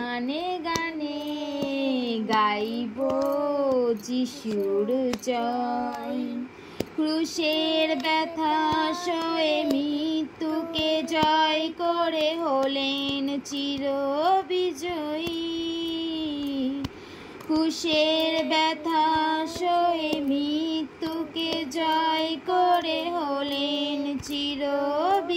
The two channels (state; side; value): identical; both; correlation 1.00